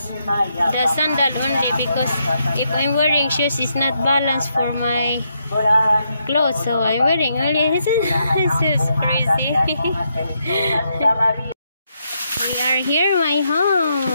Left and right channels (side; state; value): both; inverted; correlation -0.79